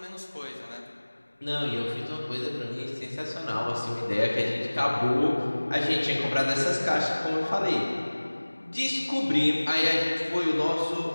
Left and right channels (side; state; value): both; inverted; correlation -1.00